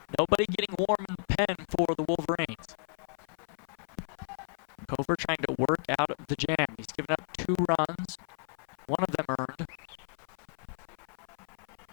Nobody getting warm in the pen for the Wolverines. Kofer trying to work out of the jam. He's given up 2 runs, one of them earned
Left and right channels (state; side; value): silent; right; 56 dB below the other